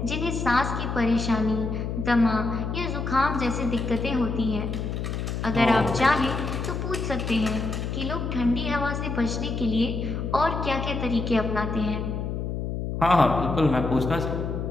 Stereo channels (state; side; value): noise; left; hum, 3 dB below the sound